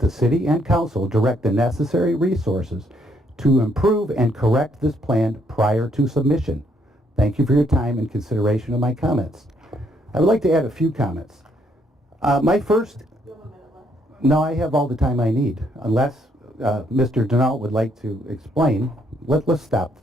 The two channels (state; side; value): normal; both; correlation 0.71